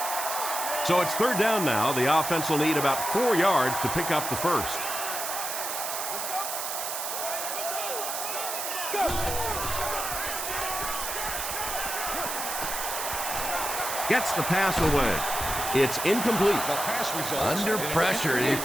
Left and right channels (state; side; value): noise; right; hiss, 4 dB below the sound